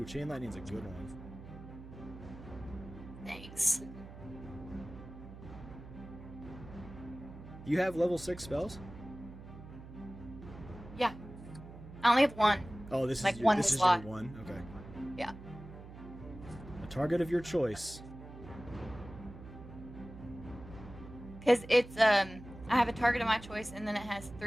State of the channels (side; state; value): right; noise; hum, 15 dB below the sound